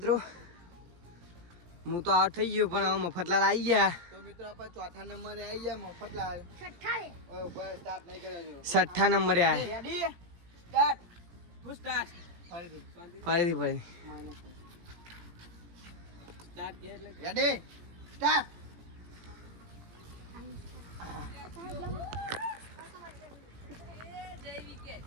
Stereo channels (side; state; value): left; late; 17 ms